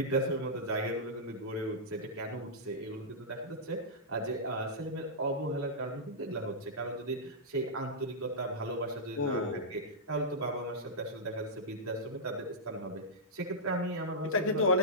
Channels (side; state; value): both; normal; correlation -0.12